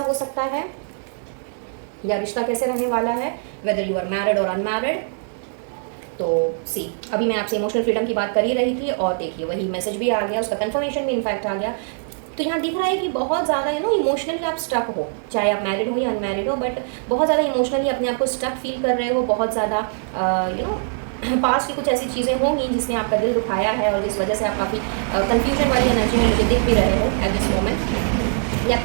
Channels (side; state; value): left; silent; digital silence